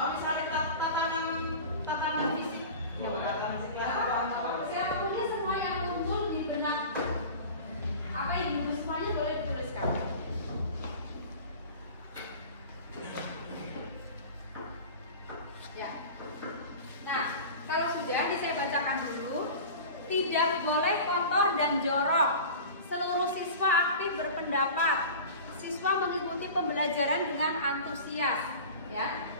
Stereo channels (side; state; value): both; inverted; correlation -0.36